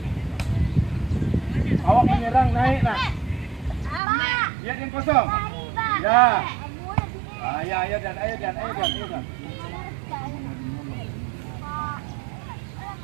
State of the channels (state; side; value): drops out; left; at 4.0 s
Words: Awak menyerang naik nak. Lihat yang kosong. Ya. Ayo Dan.